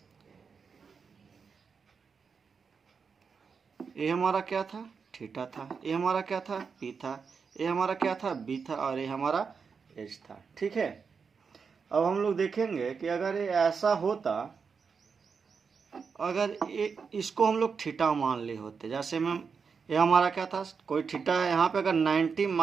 ये हमारा क्या था? थीटा था। ये हमारा क्या था? पी था। ये हमारा क्या था? बी था। और ये हमारा एच था। ठीक है, अब हम लोग देखेंगे कि अगर ये ऐसा होता, अगर ये इसको हम लोग थीटा मान लिए होते, जैसे में ये हमारा क्या था? कोई थीटा है यहाँ पे, अगर 90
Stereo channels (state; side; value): quieter; left; 5.6 dB